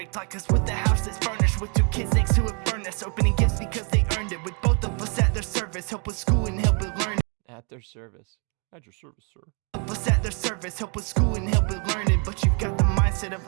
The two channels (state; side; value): quieter; left; 37.1 dB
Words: Like us with the house that's furnished with 2 kids next to a furnace, opening gifts because they earned it, with both of us at their service, help with school and help with learning. At their service. At your service, sir. Help us at their service, help with school and help with learning, but you've got the mindset of